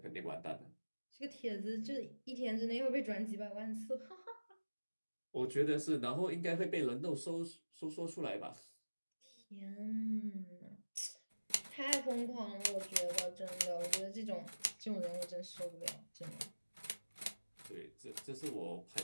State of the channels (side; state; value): both; inverted; correlation -1.00